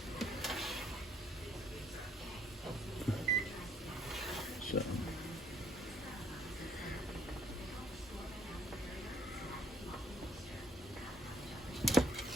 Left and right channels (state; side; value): normal; both; correlation 0.65